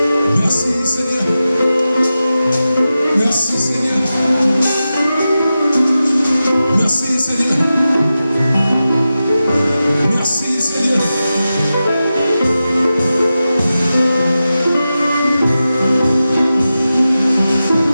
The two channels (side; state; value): both; inverted; correlation -0.92